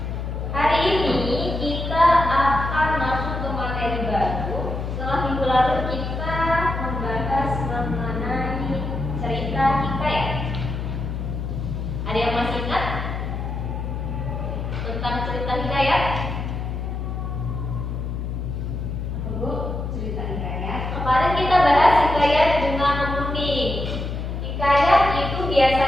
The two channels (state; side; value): noise; left; hum, 4 dB below the sound